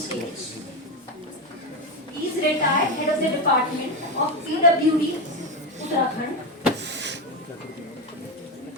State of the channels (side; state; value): both; normal; correlation 0.13